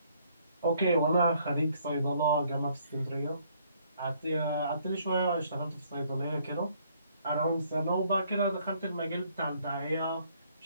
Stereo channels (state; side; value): inverted; both; correlation -0.65